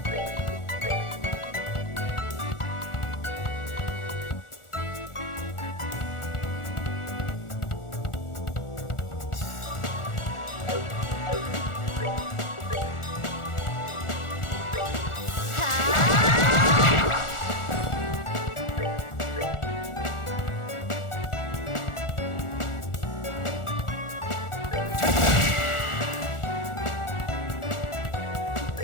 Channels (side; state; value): right; late; 1.4 ms